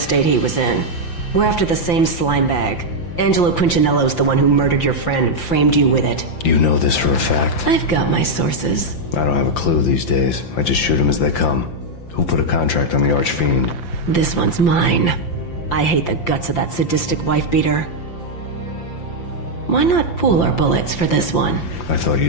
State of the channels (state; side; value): late; right; 5.8 ms